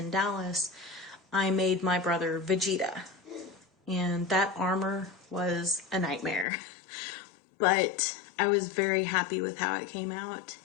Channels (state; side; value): drops out; right; at 6.5 s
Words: Dallas. I made my brother Vegeta, and that armor was a nightmare. But I was very happy with how it came out,